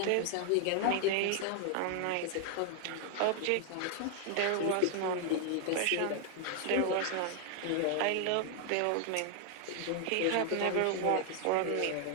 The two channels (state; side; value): different; both; correlation 0.00